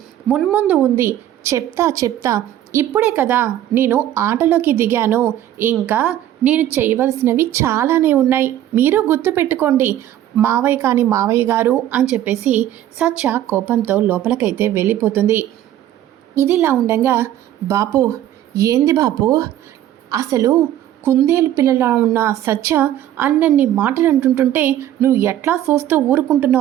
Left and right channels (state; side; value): quieter; left; 12.2 dB